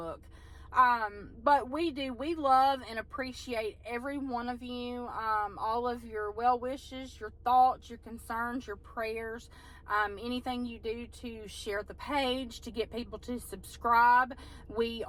But we love and appreciate every one of you, all of your well wishes, your thoughts, your concerns, your prayers, anything you do to share the page, to get people to subscribe. We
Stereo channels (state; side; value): identical; both; correlation 1.00